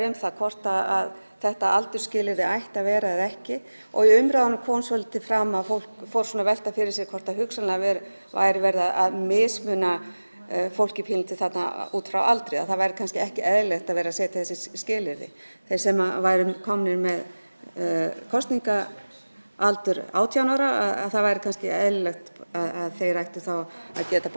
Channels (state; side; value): inverted; both; correlation -1.00